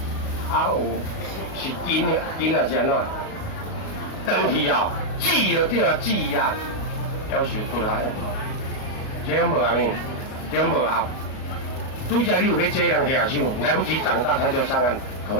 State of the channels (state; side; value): late; right; 38 ms